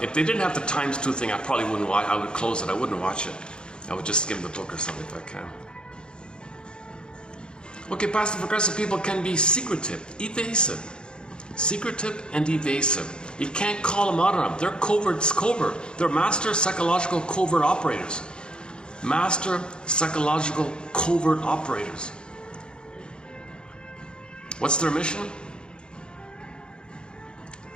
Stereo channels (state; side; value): late; right; 0.050 ms